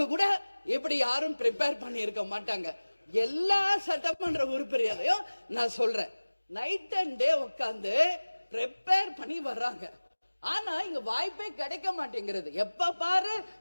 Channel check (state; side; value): inverted; both; correlation -1.00